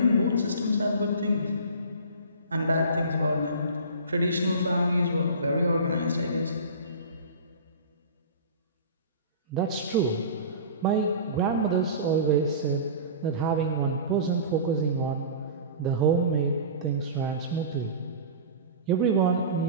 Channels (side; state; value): both; inverted; correlation -0.35